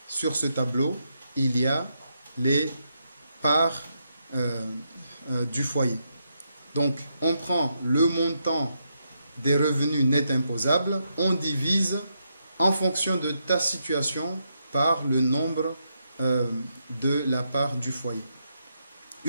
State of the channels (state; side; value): inverted; both; correlation -0.81